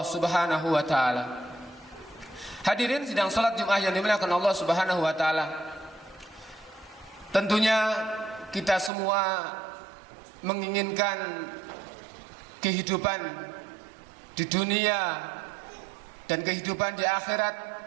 Subhanahu wa taala. Hadirin sidang salat Jumat yang dimuliakan Allah Subhanahu wa taala. Tentunya kita semua menginginkan kehidupan di dunia dan kehidupan di akhirat,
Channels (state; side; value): drops out; left; at 8.9 s